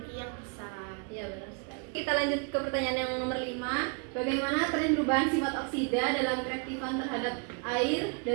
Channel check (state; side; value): quieter; left; 36.7 dB